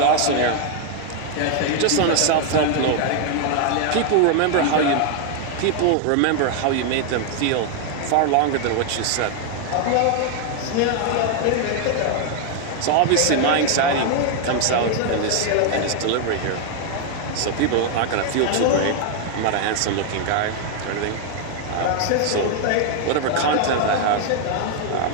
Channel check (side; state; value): both; different; correlation 0.00